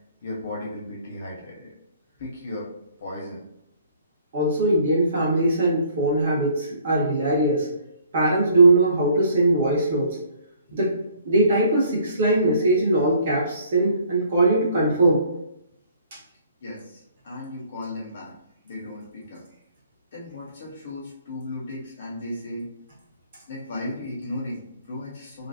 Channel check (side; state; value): both; inverted; correlation -0.59